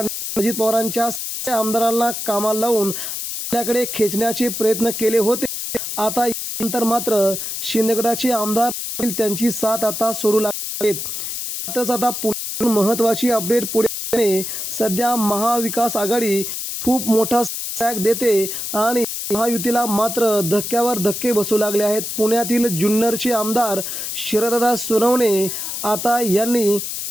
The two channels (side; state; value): left; noise; hiss, 5 dB below the sound